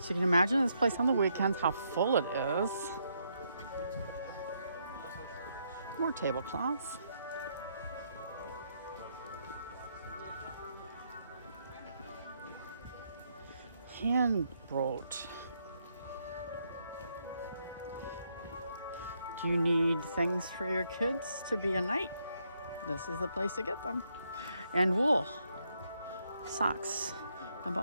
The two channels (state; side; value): inverted; both; correlation -0.76